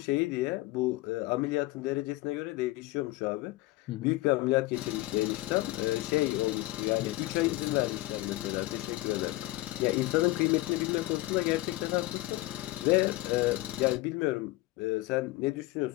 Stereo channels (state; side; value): quieter; right; 18.8 dB